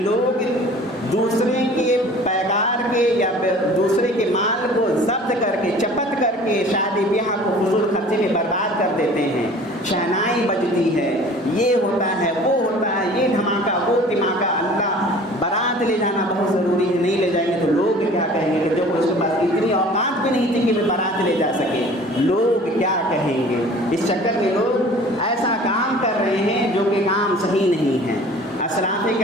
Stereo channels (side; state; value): both; normal; correlation 0.47